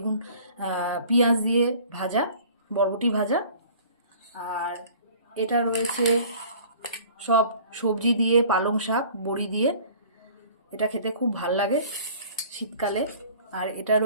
পেঁয়াজ দিয়ে ভাজা, বরবটি ভাজা। আর এটা রয়েছে সব সবজি দিয়ে, পালং শাক, বড়ি দিয়ে। এটা খেতে খুব ভাল লাগে শীতকালে। আর এটা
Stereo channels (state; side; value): inverted; both; correlation -0.49